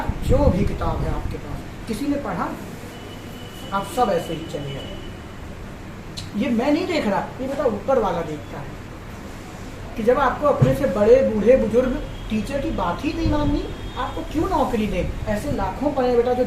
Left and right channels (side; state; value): both; identical; correlation 1.00